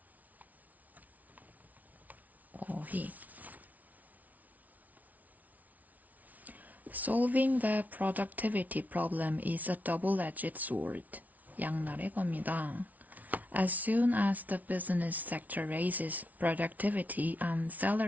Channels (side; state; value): left; late; 0.074 ms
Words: He. Solving the productivity problem is a double-edged sword. 양날의 검이다. As soon as the business sector raises productivity and